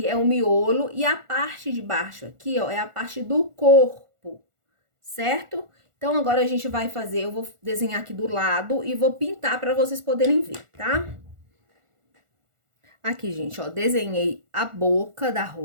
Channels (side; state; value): left; late; 1.4 ms